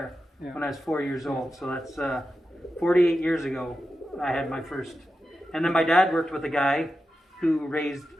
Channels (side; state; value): both; normal; correlation 0.91